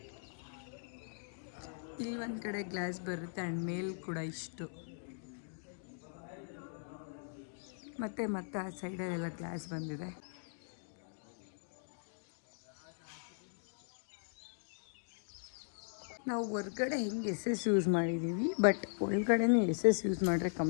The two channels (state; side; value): silent; right; digital silence